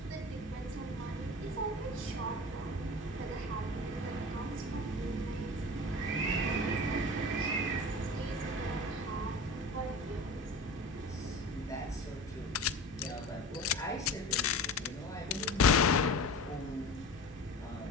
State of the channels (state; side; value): normal; both; correlation 0.34